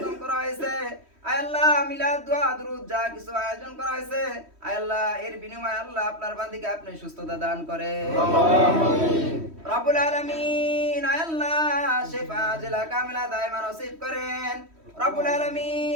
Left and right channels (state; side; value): late; left; 3.1 ms